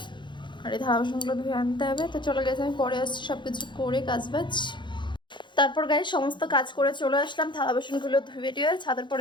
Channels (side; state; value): right; late; 0.23 ms